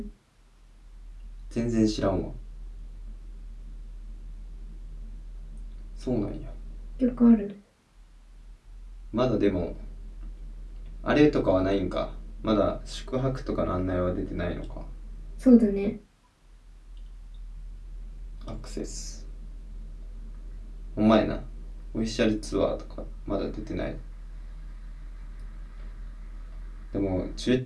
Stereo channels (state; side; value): identical; both; correlation 1.00